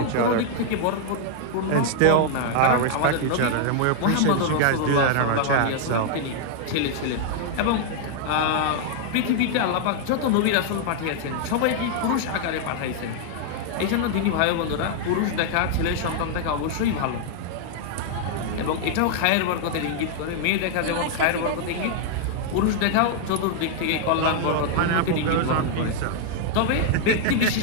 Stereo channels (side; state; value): both; different; correlation 0.00